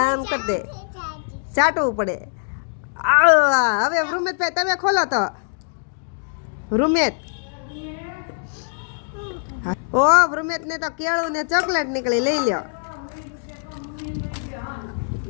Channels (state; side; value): silent; right; digital silence